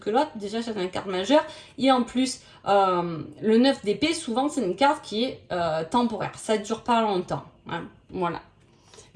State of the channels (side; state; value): both; identical; correlation 1.00